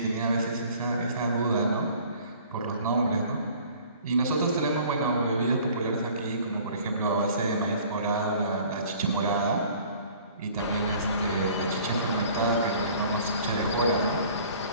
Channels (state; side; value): inverted; both; correlation -0.51